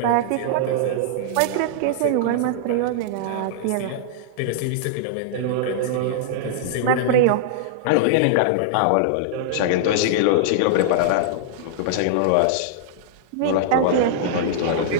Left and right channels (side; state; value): both; different; correlation -0.01